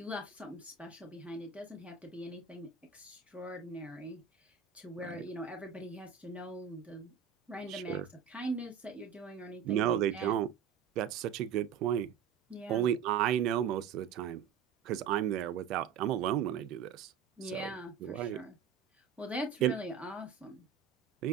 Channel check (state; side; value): quieter; left; 7.9 dB